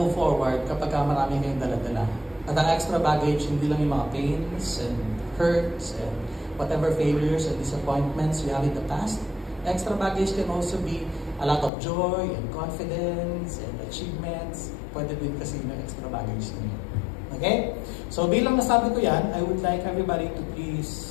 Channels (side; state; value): right; drops out; at 11.7 s